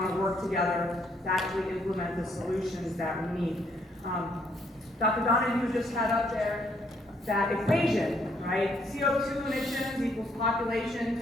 to work together to actually implement the solutions that we need. Dr. Donahue just had up there that equation, right? CO2 emissions equals population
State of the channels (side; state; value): both; normal; correlation 0.69